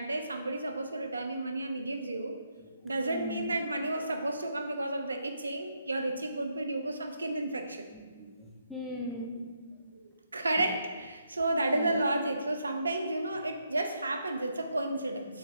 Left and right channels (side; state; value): both; inverted; correlation -0.78